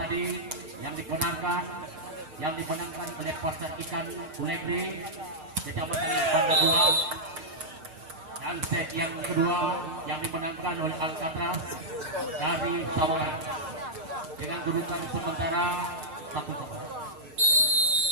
yang dimenangkan oleh Pasar Ikan Ulegri Kecamatan Banda 2, dan set yang kedua yang dimenangkan oleh Alcatraz dari Samarinda dengan kedudukan sementara 1-1.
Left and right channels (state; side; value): late; left; 6.5 ms